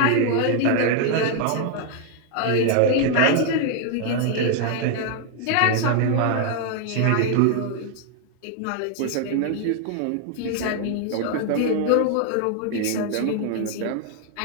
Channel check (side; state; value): both; different; correlation 0.00